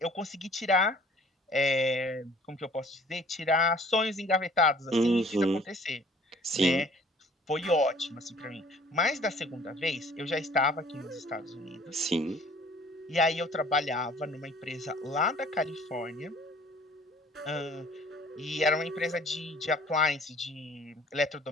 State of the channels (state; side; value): normal; both; correlation 0.54